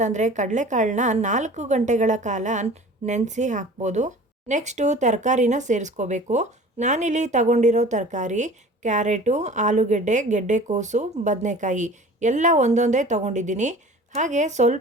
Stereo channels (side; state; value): both; normal; correlation 0.43